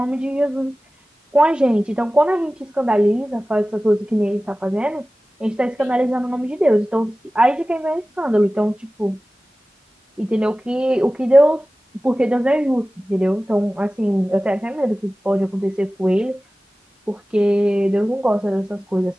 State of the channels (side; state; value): both; normal; correlation 0.97